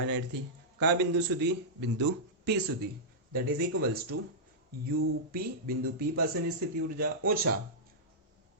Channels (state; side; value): normal; both; correlation -0.12